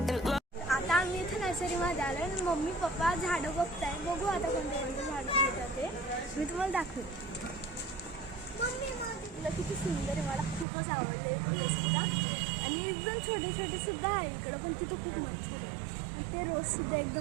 आता आम्ही इथे नर्सरीमध्ये आलो आणि मम्मी पप्पा झाडं बघताय. बघू आता कोणते कोणते झाडं येतात ते मी तुम्हाला दाखवते. तुला किती सुंदर आहे, मला खूपच आवडले फुलं सुद्धा. आणि एकदम छोटे छोटे सुद्धा आहे इकडं पण तिथं खूप मच्छर आहे. आणि ते रोज सुद्धा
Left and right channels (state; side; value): drops out; left; at 10.7 s